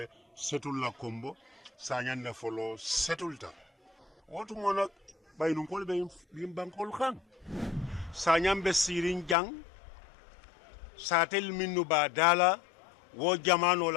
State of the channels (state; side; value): drops out; right; at 9.3 s